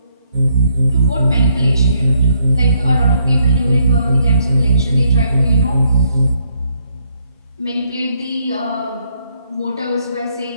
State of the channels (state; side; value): inverted; both; correlation -0.74